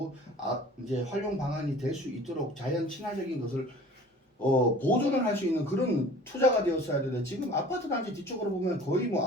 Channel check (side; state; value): both; normal; correlation 0.45